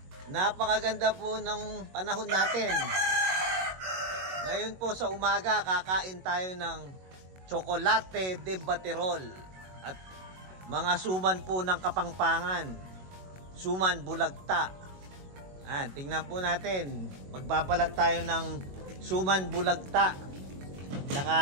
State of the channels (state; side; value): late; left; 22 ms